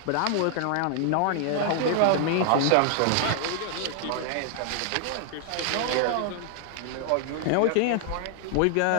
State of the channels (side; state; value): both; different; correlation 0.00